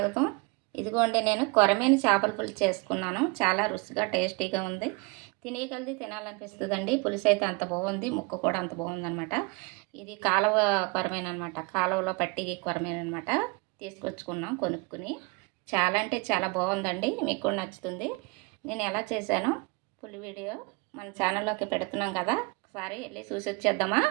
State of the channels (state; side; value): quieter; left; 28.5 dB